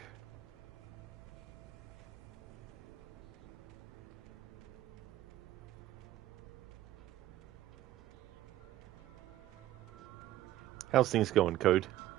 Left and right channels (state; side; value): quieter; left; 14.4 dB